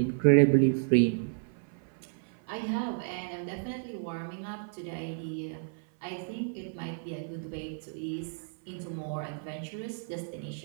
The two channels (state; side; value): silent; left; 57 dB below the other